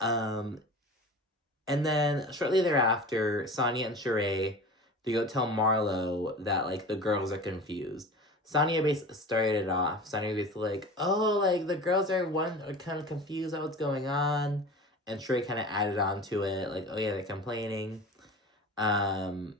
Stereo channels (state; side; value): normal; both; correlation 0.35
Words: And then, shortly thereafter, Sanya and Shereé, they go tell Marlo that, like, the girls are confused. Sanya basically started it off. Sanya was basically like, oh, like, the girls are kind of confused about what's going on. And Shereé kind of added on to it, like, oh, yeah, they're complaining. And